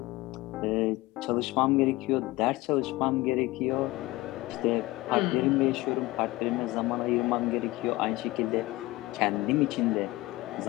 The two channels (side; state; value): right; quieter; 19.9 dB